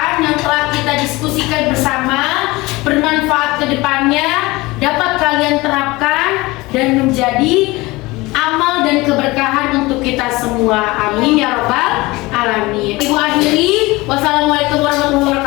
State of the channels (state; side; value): quieter; right; 21.6 dB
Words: yang telah kita diskusikan bersama, bermanfaat ke depannya, dapat kalian terapkan dan menjadi amal dan keberkahan untuk kita semua. Amin ya rabbal alamin. Ibu akhiri, wassalamualaikum warahmatullahi